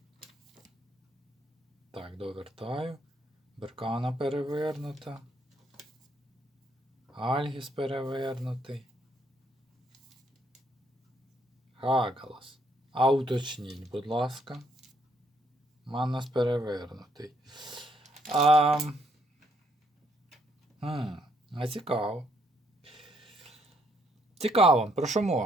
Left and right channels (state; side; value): normal; both; correlation 0.71